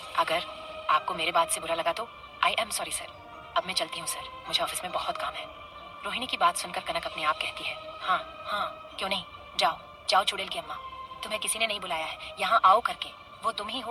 अगर आपको मेरे बात से बुरा लगा तो आई एम सॉरी सर। अब मैं चलती हूँ सर, मुझे ऑफिस में बहुत काम है। रोहिणी की बात सुनकर कनक अपने आप कहती है, हाँ हाँ क्यों नहीं, जाओ जाओ चुड़ैल की अम्मा, तुम्हें किसी ने नहीं बुलाया है यहाँ आओ करके। वो तुम ही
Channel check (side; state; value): both; identical; correlation 1.00